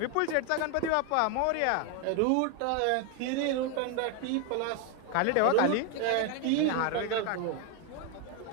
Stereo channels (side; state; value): both; different; correlation 0.01